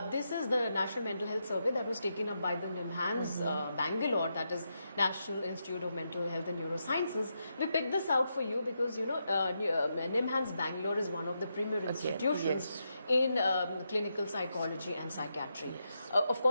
this is the National Mental Health Survey that was taken up by the NIMHANS Bangalore, that is National Institute of Mental Health and Neurosciences. We picked this out for you because NIMHANS Bangalore is one of the premier institutions in clinical psychology and psychiatry. Of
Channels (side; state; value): both; inverted; correlation -0.84